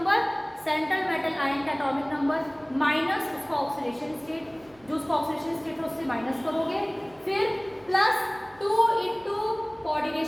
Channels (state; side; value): noise; right; hum, 28 dB below the sound